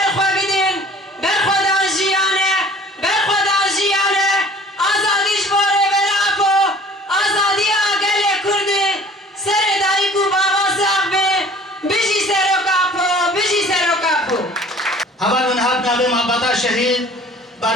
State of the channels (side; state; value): both; normal; correlation 0.49